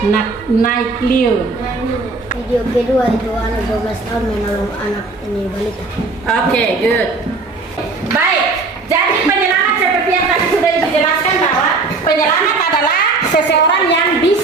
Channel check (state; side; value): quieter; left; 3.8 dB